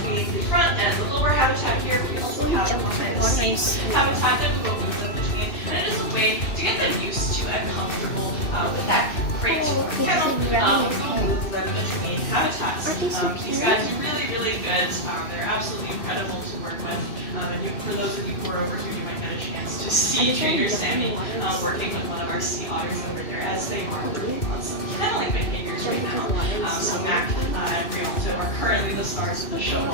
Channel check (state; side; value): late; right; 2.6 ms